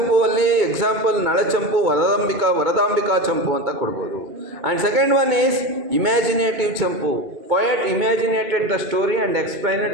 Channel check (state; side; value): late; left; 2.2 ms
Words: ಅಲ್ಲಿ ಎಕ್ಸಾಂಪಲ್ ನಳಚಂಪು, ವರದಾಂಬಿಕಾ ಚಂಪು ಅಂತ ಕೊಡ್ಬೋದು. And second one is imaginative champu. Poet imaginated the story and explained